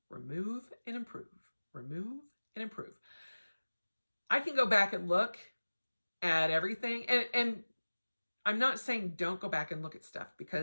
Remove and improve. Remove and improve. I can go back and look at everything, and I'm not saying don't go back and look at stuff,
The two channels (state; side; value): inverted; both; correlation -1.00